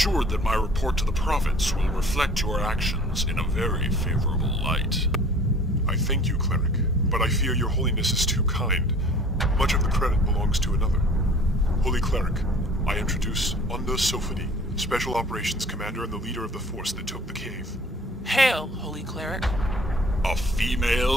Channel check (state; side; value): normal; both; correlation 0.49